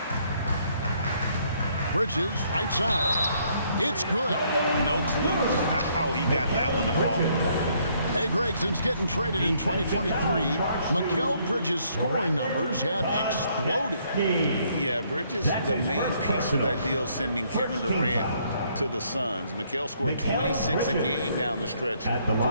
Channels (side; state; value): both; inverted; correlation -0.68